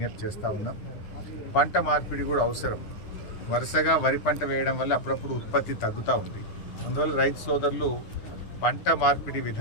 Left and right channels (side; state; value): right; late; 10 ms